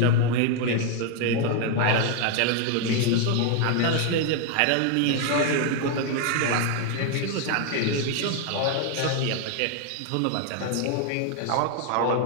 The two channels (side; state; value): both; different; correlation 0.00